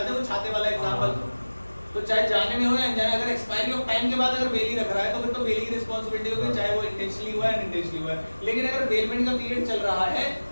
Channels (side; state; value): both; inverted; correlation -1.00